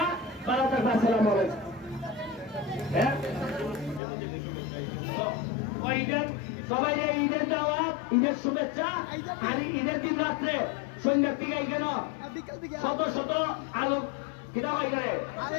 12 আসসালামু আলাইকুম হ্যাঁ সবাই ঈদের দাওয়াত ঈদের শুভেচ্ছা আর ঈদের দিন রাত্রে সন্ধ্যার দিকে কেন শত শত আলোক কিনা হয় করে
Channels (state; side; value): drops out; right; at 4.0 s